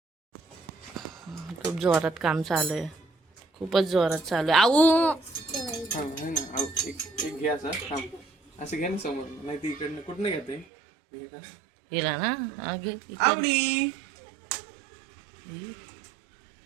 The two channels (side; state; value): left; drops out; at 10.7 s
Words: खूप जोरात काम चालू आहे, खूपच जोरात चालू आहे. आऊ एक घे असं घे ना समोर, नाही ती इकडनं कुठनं घेते गेला ना. घे इकडे. आवडी.